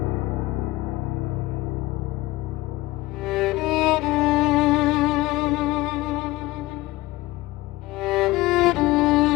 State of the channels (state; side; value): quieter; right; 19.3 dB